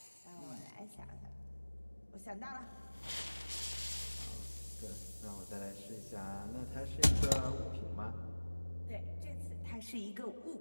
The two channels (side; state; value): both; inverted; correlation -1.00